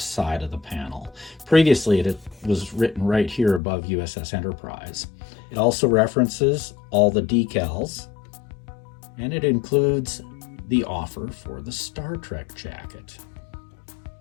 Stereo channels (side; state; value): right; drops out; at 3.6 s